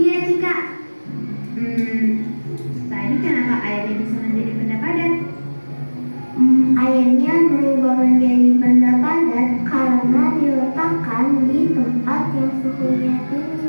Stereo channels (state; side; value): inverted; both; correlation -1.00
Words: Cika. Tadi kenapa airnya bisa menjadi benda padat? Airnya berubah menjadi benda padat karena diletakkan di tempat yang suhunya tinggi,